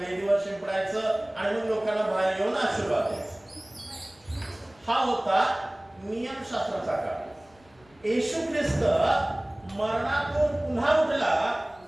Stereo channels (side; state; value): left; noise; rumble, 30 dB below the sound